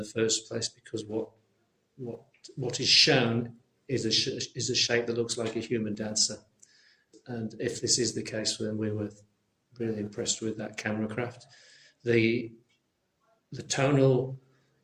first place, because what is shown is a shape that looks like a human dancer. And if this is the case, then we were really impressed with that camera craft. The tonal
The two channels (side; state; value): both; identical; correlation 1.00